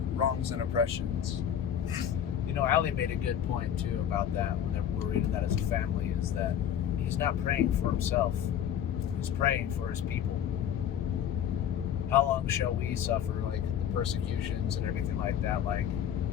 oppressions? You know, Ali made a good point too about that when we're reading that as a family, is that he's not praying for himself. He's praying for his people. How long shall we suffer, like, the persecutions and everything like that? Like,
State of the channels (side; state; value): right; quieter; 9.5 dB